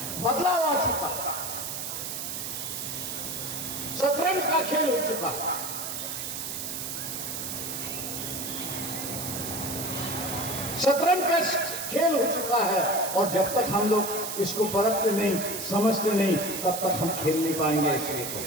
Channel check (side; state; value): right; noise; hiss, 5 dB below the sound